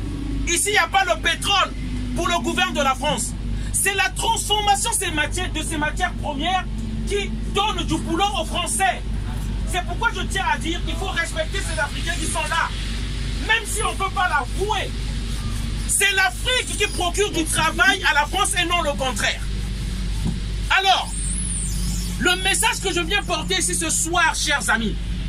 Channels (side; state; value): both; identical; correlation 1.00